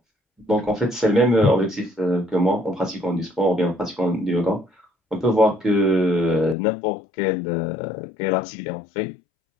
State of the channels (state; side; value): drops out; right; at 6.6 s